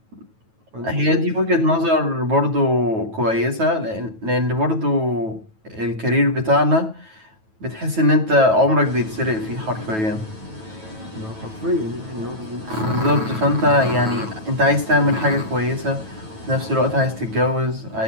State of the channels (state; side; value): late; left; 9.2 ms